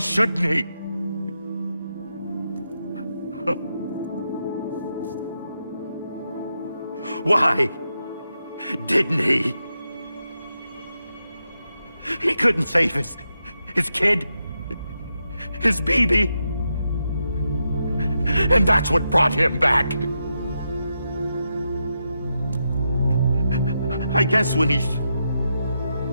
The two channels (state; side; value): inverted; both; correlation -0.85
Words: he? Why didn't he? He couldn't save his kid, his baby. And that's what brought him back. I guess when he